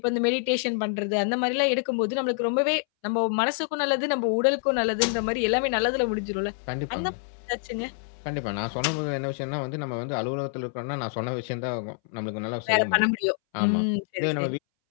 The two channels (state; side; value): silent; right; 60 dB below the other